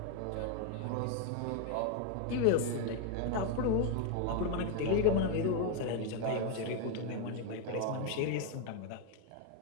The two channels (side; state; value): both; different; correlation 0.01